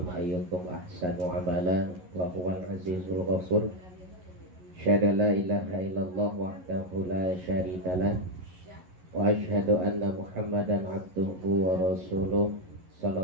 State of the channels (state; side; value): late; left; 11 ms